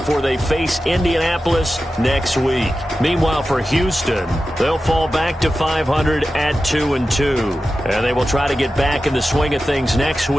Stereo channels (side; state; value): both; normal; correlation 0.93